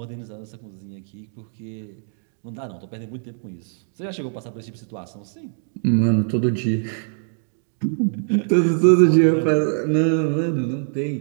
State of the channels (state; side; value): silent; left; digital silence